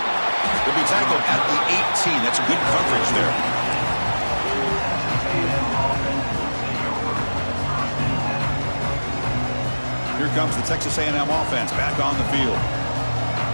Will be tackled at the 18. That's good coverage there. Here comes the Texas A&M offense back on the field.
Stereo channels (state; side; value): inverted; both; correlation -1.00